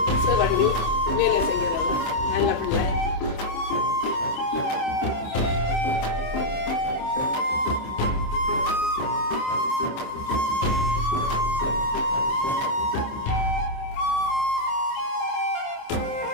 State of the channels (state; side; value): late; right; 27 ms